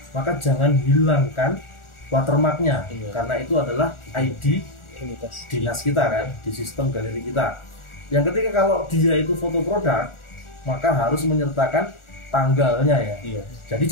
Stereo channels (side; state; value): right; late; 1.4 ms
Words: maka jangan hilangkan watermarknya, Iya. karena itu adalah ID Identitas. dinas kita kan, di sistem galeri kita. Yang ketiga, kalau dia itu foto produk, maka harus menyertakan tanggalnya ya. Iya. Jadi